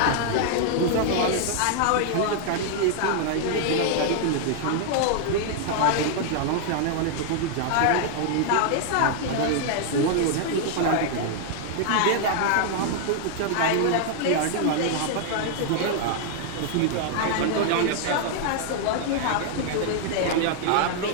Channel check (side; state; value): both; different; correlation 0.00